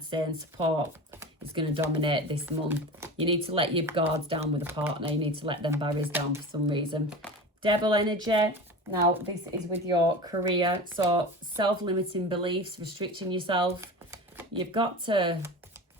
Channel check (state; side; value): normal; both; correlation 0.31